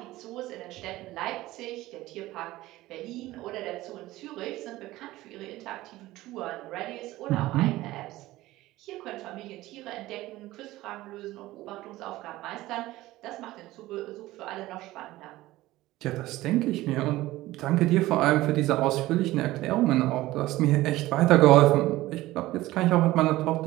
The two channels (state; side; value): quieter; left; 17.2 dB